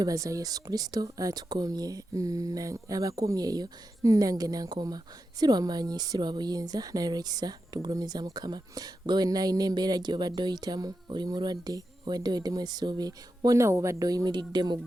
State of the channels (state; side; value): normal; both; correlation 0.89